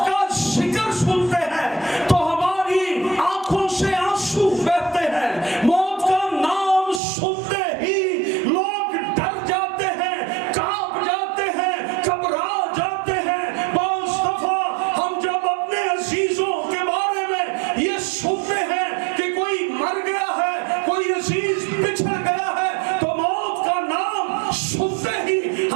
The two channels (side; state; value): left; drops out; at 7.0 s